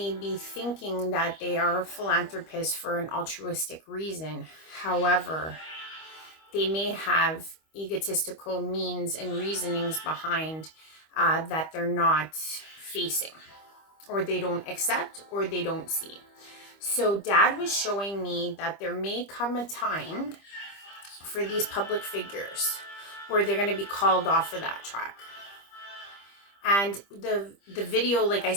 be thinking that they are philanthropists for an altruistic reason. However, they may have egotistical means and reasonings behind that they're not facing, or they don't accept, or they don't see. So Dad was showing me that there may come a time for these public figures where they're going to be called off of that track. And the video, like I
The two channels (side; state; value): right; late; 25 ms